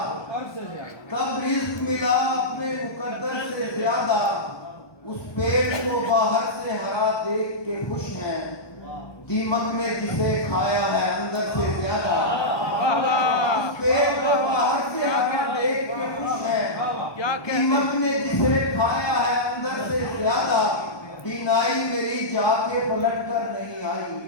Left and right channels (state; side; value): late; right; 1.3 ms